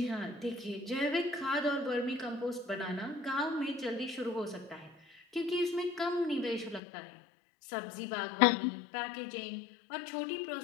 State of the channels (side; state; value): right; drops out; at 6.8 s